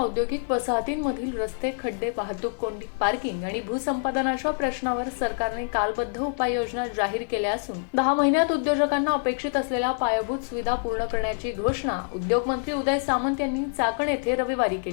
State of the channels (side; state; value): right; silent; digital silence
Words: वसाहतींमधील रस्ते, खड्डे, वाहतूक कोंडी, पार्किंग आणि भूसंपादनाच्या प्रश्नावर सरकारने कालबद्ध उपाययोजना जाहीर केल्या असून 10 महिन्यात उद्योजकांना अपेक्षित असलेल्या पायाभूत सुविधा पूर्ण करण्याची घोषणा उद्योग मंत्री उदय सामंत यांनी चाकण येथे रविवारी